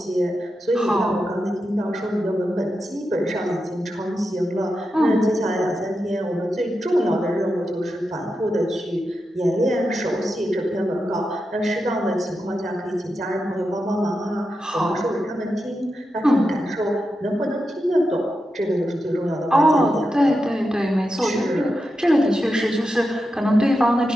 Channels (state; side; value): normal; both; correlation 0.88